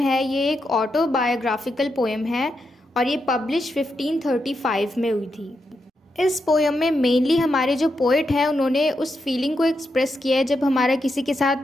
ये एक autobiographical poem है और ये पब्लिश 1535 में हुई थी। इस पोएम में मेनली हमारे जो पोइट हैं उन्होंने उस फीलिंग को एक्सप्रेस किया है जब हमारा किसी के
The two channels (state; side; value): normal; both; correlation 0.84